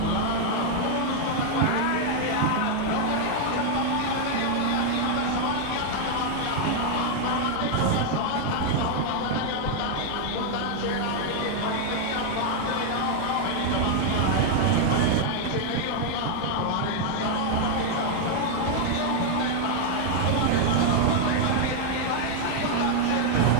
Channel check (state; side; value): different; both; correlation 0.00